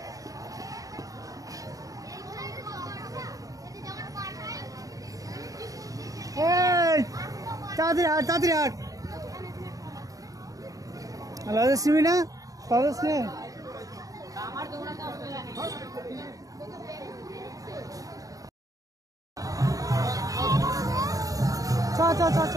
তাড়াতাড়ি হাট। সিমি না পারস নে। চ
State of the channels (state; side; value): late; left; 0.17 ms